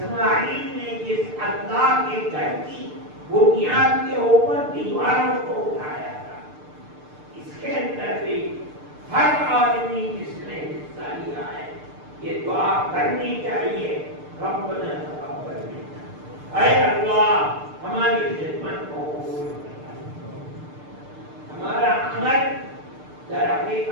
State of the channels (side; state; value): left; late; 6.7 ms